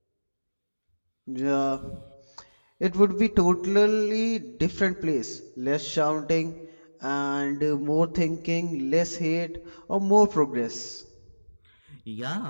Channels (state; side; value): inverted; both; correlation -1.00